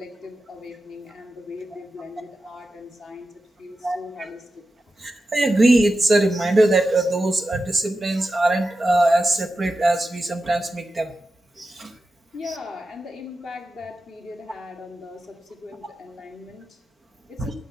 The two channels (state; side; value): normal; both; correlation 0.92